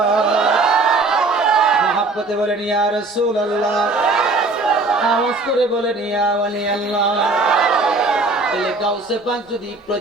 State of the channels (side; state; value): left; quieter; 3.3 dB